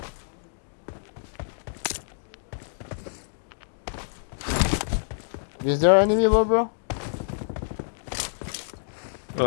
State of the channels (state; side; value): silent; right; digital silence